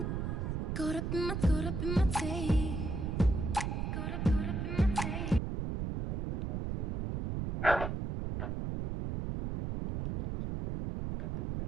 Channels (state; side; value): noise; right; rumble, 2 dB below the sound